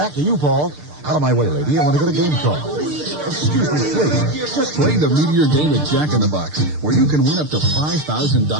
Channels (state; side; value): late; left; 6.7 ms